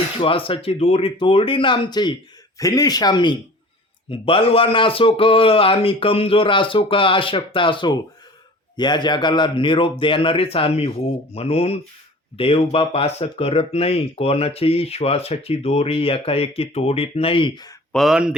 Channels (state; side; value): normal; both; correlation 0.43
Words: श्वासाची दोरी तोडली ना आमची. फिनिश. आम्ही बलवान असो का आम्ही कमजोर असो का अशक्त असो, या जगाला निरोप देणारेच आम्ही होऊ. म्हणून देवबाप असं करत नाही. कोणाची श्वासाची दोरी एकाएकी तोडीत नाही. पण